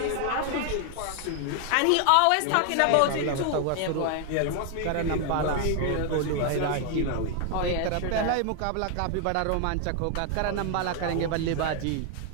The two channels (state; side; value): different; both; correlation 0.00